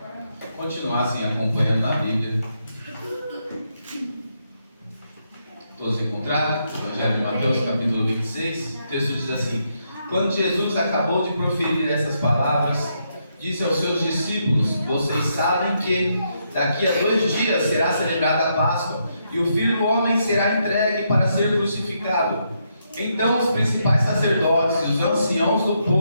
continuassem acompanhando na Bíblia. Todos encontraram? Evangelho de Mateus, capítulo 26. O texto diz assim: Quando Jesus acabou de proferir essas palavras, disse aos seus discípulos: Vocês sabem que daqui a 2 dias será celebrada a Páscoa, e o Filho do Homem será entregue para ser crucificado. Então os principais sacerdotes e os anciãos do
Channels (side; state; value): both; inverted; correlation -0.79